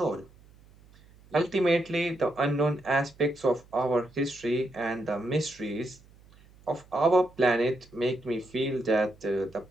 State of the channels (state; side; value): noise; right; hum, 26 dB below the sound